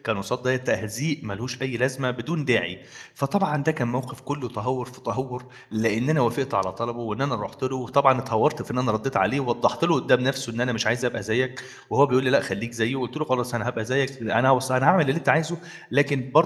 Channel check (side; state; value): both; identical; correlation 1.00